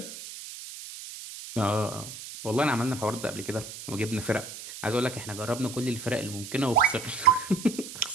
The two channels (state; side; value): noise; right; hiss, 12 dB below the sound